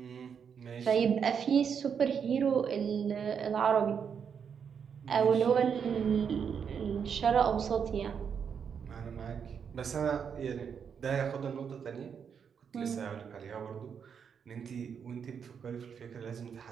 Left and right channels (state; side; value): quieter; left; 7.1 dB